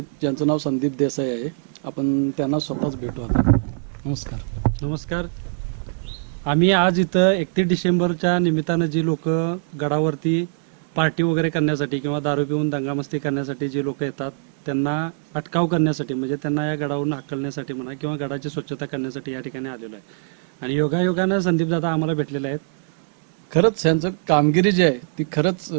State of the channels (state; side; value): silent; left; 64 dB below the other